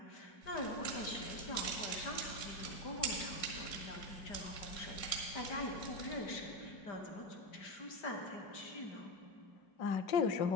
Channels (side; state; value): right; late; 5.0 ms